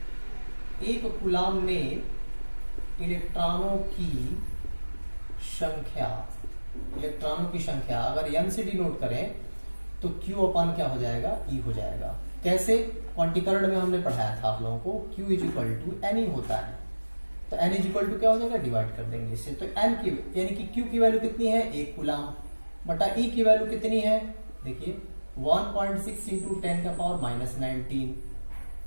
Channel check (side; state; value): both; inverted; correlation -1.00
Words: एक कूलाम में इलेक्ट्रॉनों की संख्या अगर n से डिनोट करें तो Q अपान क्या हो जाएगा, E हो जाएगा। कैसे, क्वांटीकरण में हमने पढ़ाया था आप लोगों को, Q इक्वल टू N होता है। तो N इक्वल टू क्या हो जाएगा, डिवाइड कर देंगे इससे। तो N की यानी कि Q की वैल्यू कितनी है, एक कूलाम, बटा E की वैल्यू कितनी है, देखिए 1.6 इंटू 10 का पावर -19।